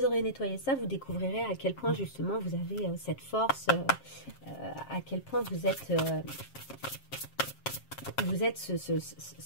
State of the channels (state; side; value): late; right; 7.5 ms